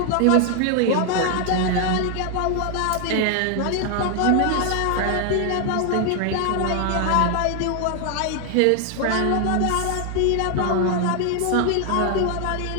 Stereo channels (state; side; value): different; both; correlation 0.00